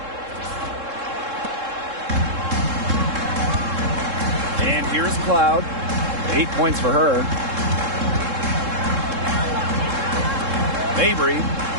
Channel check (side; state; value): left; late; 3.7 ms